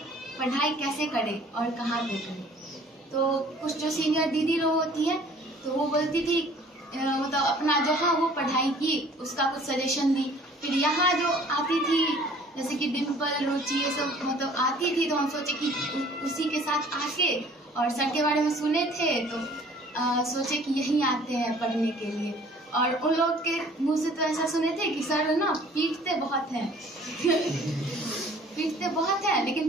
पढ़ाई कैसे करें और कहाँ पे करें। तो कुछ जो सीनियर दीदी लोग होती हैं तो वो बोलती थी मतलब अपना जहाँ वो पढ़ाई की उसका कुछ सजेशन दी। फिर यहाँ जो आती थी जैसे कि डिम्पल, रुचि, ये सब मतलब आती थी तो हम सोचे कि उसी के साथ आके और सर के बारे में सुने थे तो सोचे कि यहीं आते हैं पढ़ने के लिए। और उन लोग के मुंह से तो ऐसा सुने थे कि सर ना पीटते बहुत हैं पीटते बहुत हैं, लेकिन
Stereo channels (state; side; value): normal; both; correlation 0.53